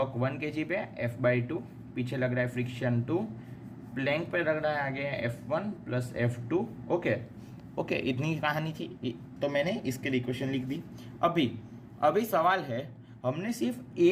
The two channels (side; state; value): both; identical; correlation 1.00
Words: 1 kg पे F/2, पीछे लग रहा है फ्रिक्शन 2, प्लैंक पे लग रहा है आगे F1 प्लस F2। ओके, इतनी कहानी थी, तो मैंने इसके लिए इक्वेशन लिख दी। अभी सवाल है, हमने सिर्फ ए